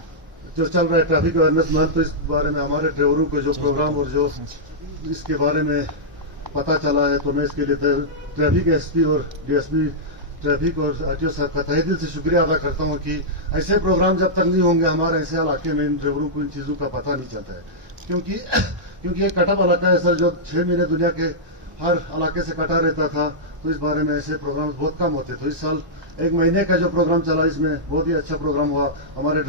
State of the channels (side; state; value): left; late; 1.0 ms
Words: जो चल रहा है ट्रैफिक अवेयरनेस मंथ, तो इस बारे में हमारे ड्राइवरों को जो प्रोग्राम और जो इसके बारे में पता चला है, तो मैं इसके लिए ट्रैफिक एसपी और डीएसपी ट्रैफिक और आरटीओ साहब का तहे दिल से शुक्रिया अदा करता हूँ कि ऐसे प्रोग्राम जब तक नहीं होंगे हमारे ऐसे इलाके में इन ड्राइवरों को इन चीज़ों का पता नहीं चलता है। क्योंकि एक कटअप इलाका है सर, जो 6 महीने दुनिया के हर इलाके से कटा रहता था, तो इस बारे में ऐसे प्रोग्राम बहुत कम होते। तो इस साल 1 महीने का जो प्रोग्राम चला, इसमें बहुत ही अच्छा प्रोग्राम हुआ, हमारे